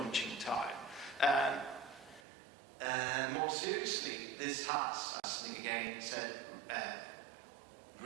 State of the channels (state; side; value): drops out; left; at 2.2 s